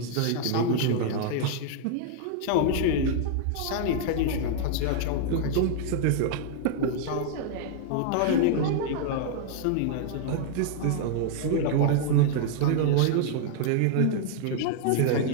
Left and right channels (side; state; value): both; different; correlation -0.01